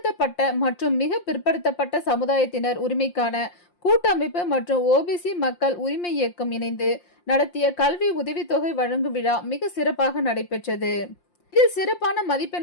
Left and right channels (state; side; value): late; right; 5.7 ms